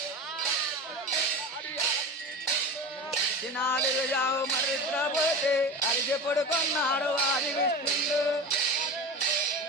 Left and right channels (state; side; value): normal; both; correlation 0.29